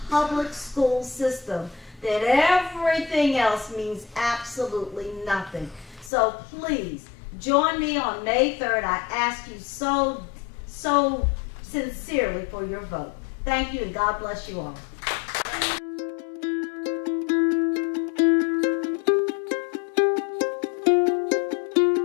public school system, then everything else means absolutely nothing. So please, join me on May 3rd. I ask you so sincerely for your vote. Thank you, and God bless you all.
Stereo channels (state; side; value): drops out; right; at 6.1 s